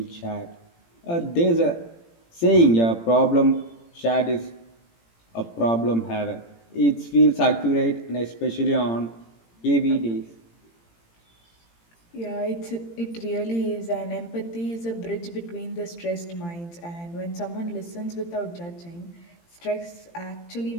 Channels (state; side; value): late; right; 18 ms